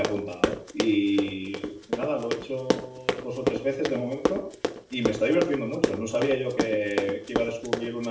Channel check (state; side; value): identical; both; correlation 1.00